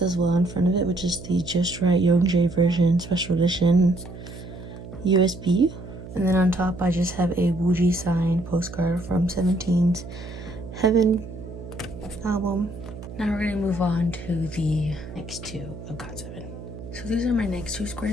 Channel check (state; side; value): noise; right; hum, 13 dB below the sound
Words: as well in front of it, which is the Just Right Youngjae version special edition USB. And then on top, I just have a Wooji signed postcard from 17's Heaven album. Now we're gonna move on to the next 2 of GOT7. So these are my next 2